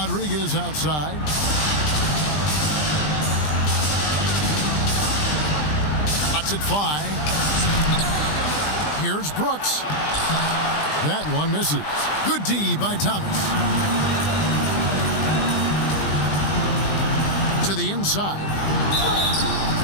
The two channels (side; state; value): right; late; 20 ms